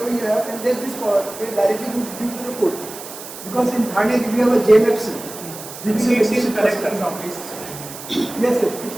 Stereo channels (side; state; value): right; noise; hiss, 13 dB below the sound